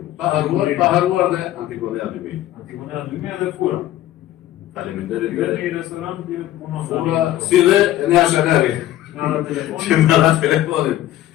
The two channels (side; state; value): right; quieter; 13.7 dB